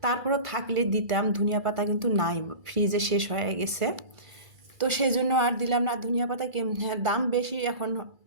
তারপরও থাকলে দিতাম, ধনিয়া পাতা কিন্তু নাই, ফ্রিজে শেষ হয়ে গেছে, তো সেই জন্য আর দিলাম না। ধনিয়া পাতা হ্যাঁ দাম বেশি এখন,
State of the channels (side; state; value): left; late; 2.3 ms